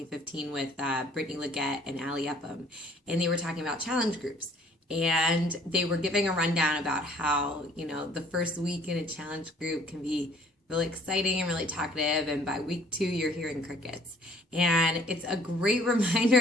with Brittany Leggett and Ali Upham. And they were talking about challenge groups. And they were giving a rundown about how, the first week in a challenge group can be really exciting and really talkative. And by week 2, you're hearing crickets. And it's a great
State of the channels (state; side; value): normal; both; correlation 0.57